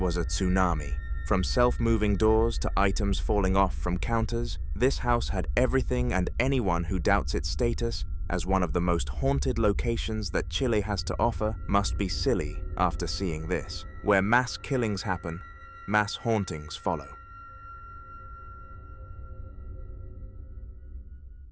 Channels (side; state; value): both; identical; correlation 1.00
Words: a tsunami. From self-moving doors to items falling off from counters, this house had everything, and anyone who doubts its status as one of the most haunted locations that Chile has to offer must be silly after seeing this. Where mass killings happen, mass hauntings follow.